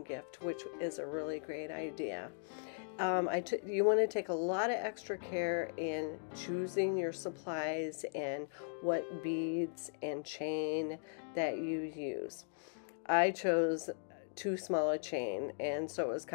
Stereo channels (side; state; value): right; silent; digital silence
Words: gift, which is a really great idea. You want to take a lot of extra care in choosing your supplies and what beads and chain that you use. I chose too small a chain, and so it was